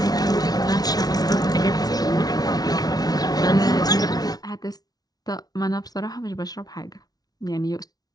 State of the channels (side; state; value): right; late; 0.19 ms